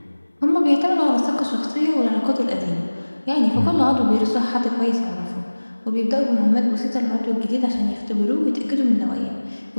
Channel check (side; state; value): both; inverted; correlation -1.00